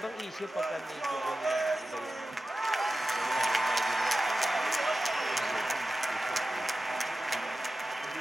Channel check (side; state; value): both; normal; correlation 0.94